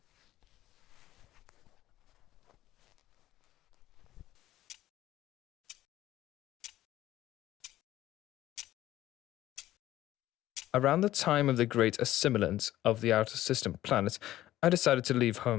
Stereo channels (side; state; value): right; quieter; 14.4 dB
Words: Around the time of the great assimilance of the outer system planets, I decided to leave